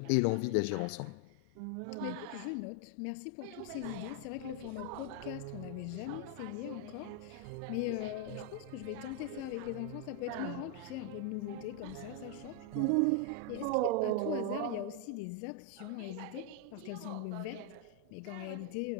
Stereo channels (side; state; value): both; different; correlation 0.00